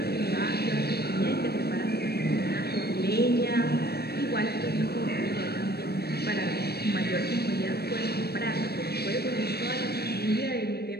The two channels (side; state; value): right; late; 0.47 ms